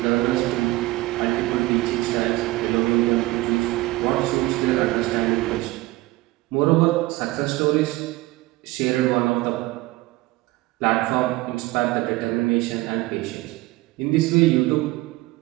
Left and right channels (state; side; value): quieter; left; 19.6 dB